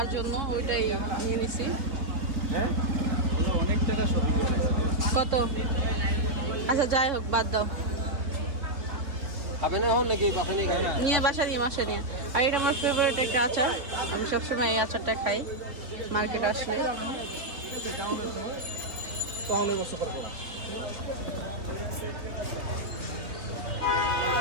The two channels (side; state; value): left; late; 3.9 ms